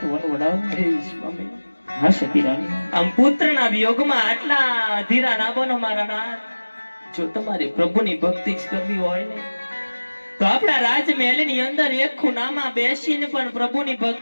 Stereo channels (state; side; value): inverted; both; correlation -1.00